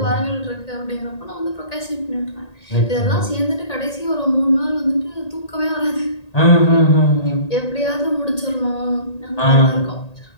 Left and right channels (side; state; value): right; late; 1.8 ms